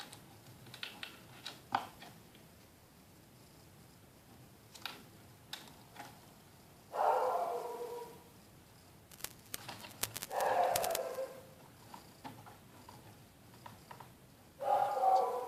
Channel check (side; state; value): both; identical; correlation 1.00